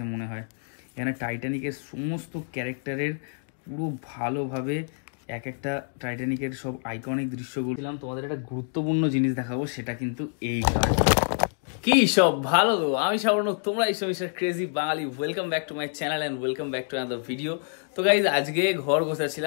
মনে হয়। এখানে টাইটানিকের সমস্ত ক্যারেক্টারের পুরো ভালোভাবে এক একটা টাইটানিকের সব আইকনিক দৃশ্যগুলো দিলাম। তোমাদের একটা গুরুত্বপূর্ণ জিনিস দেখাবো, সেটা কিন্তু এই কার্ড। কি সব ভালো, আমি সাবর্ণক, তোমরা এই সব crazy Bangali. Welcome back to my channel and welcome back to another video. তো গাইজ, আজকে ঘর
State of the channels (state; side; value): silent; right; 60 dB below the other